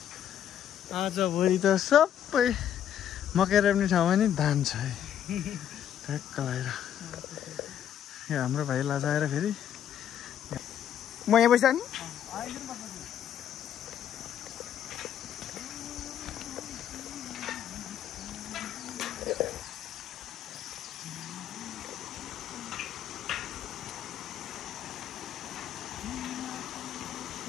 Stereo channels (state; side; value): quieter; right; 10.0 dB